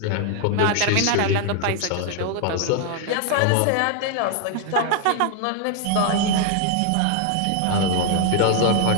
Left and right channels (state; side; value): different; both; correlation 0.01